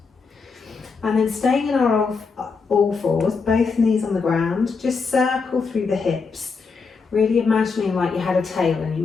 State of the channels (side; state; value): right; quieter; 4.9 dB